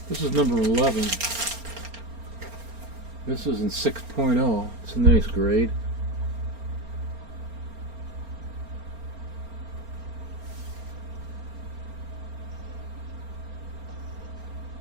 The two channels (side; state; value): left; late; 4.3 ms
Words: This is number 11. This is in 6.0. It's a nice grade.